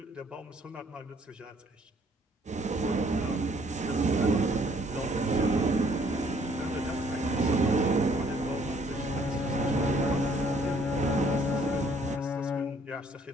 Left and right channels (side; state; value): both; normal; correlation 0.63